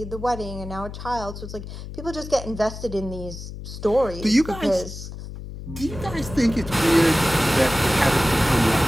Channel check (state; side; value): noise; left; hum, 11 dB below the sound